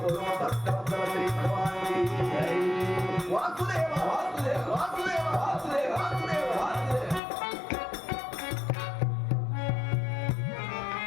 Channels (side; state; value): right; drops out; at 7.2 s